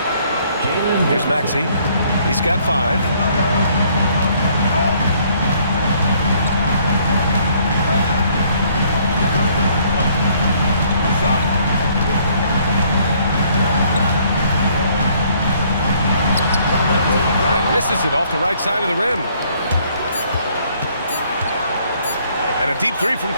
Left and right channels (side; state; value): both; inverted; correlation -0.64